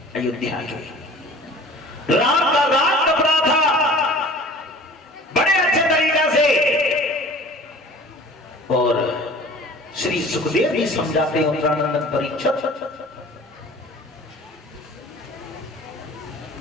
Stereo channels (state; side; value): normal; both; correlation 0.45